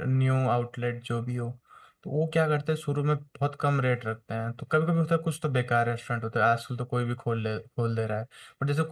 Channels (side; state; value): both; identical; correlation 1.00